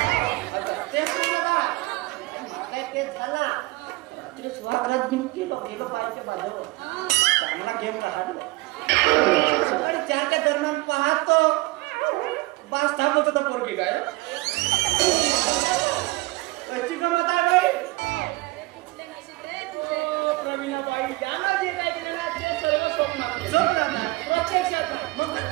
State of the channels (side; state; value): left; quieter; 21.8 dB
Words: तेच तेच झाला रात्री स्वागत घेऊन गेलो बाईच्या बाजूवर सामना घेऊन काढलो 4च्या दरम्यान पाहतो बास थांबत होता पोरगी काय कशी गमत आहे बाई प्रवीणाबाई यांना जे काय केलं ना ते सर्व स्वप्नात प्रत्यक्षात मग